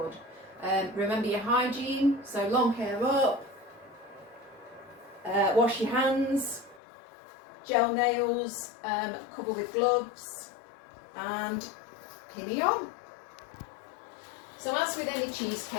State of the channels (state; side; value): drops out; right; at 6.8 s